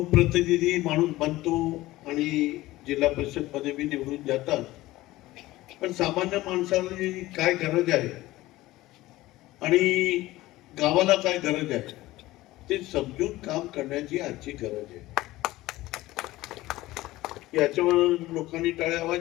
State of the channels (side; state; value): right; quieter; 17.5 dB